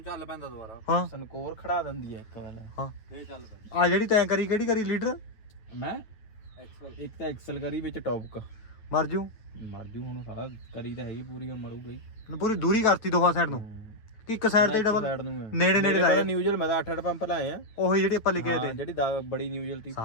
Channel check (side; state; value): right; late; 9.2 ms